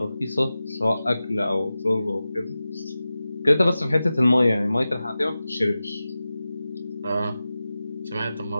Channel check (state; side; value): inverted; both; correlation -0.94